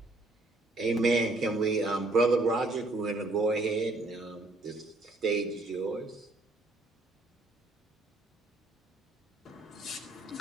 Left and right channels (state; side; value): normal; both; correlation 0.66